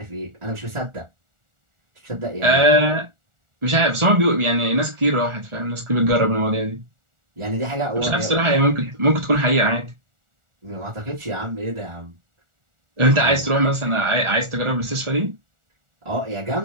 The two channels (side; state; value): left; late; 1.4 ms